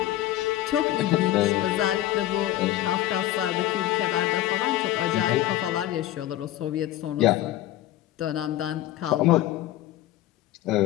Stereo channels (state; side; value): quieter; right; 14.1 dB